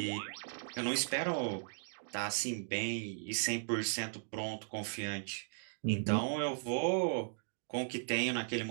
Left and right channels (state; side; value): silent; left; digital silence